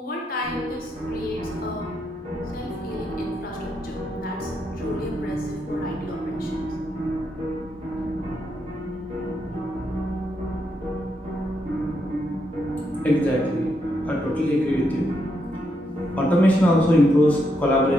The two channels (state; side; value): normal; both; correlation 0.80